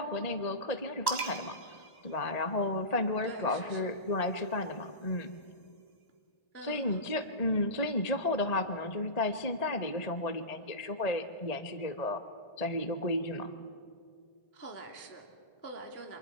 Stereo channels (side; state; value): right; late; 1.1 ms